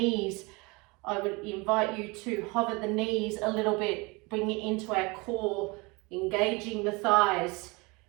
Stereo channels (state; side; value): quieter; left; 26.6 dB